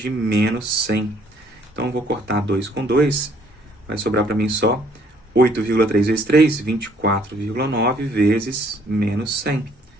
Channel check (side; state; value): both; normal; correlation 0.63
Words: menos 100. Então, eu vou cortar 2 com 2, vai sobrar para mim só 8,3 vezes 3, 24,9 vezes menos 100.